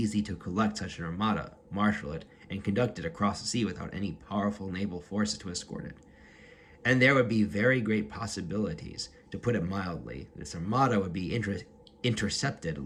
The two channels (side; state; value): both; identical; correlation 1.00